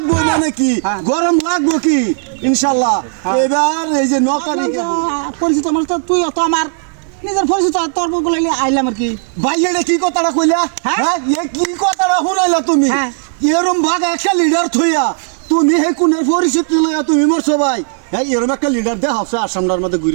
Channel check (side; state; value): left; silent; digital silence